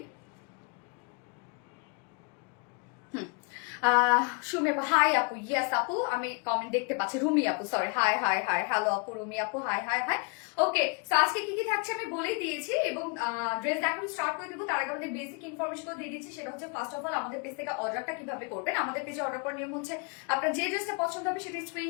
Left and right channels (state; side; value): quieter; right; 33.2 dB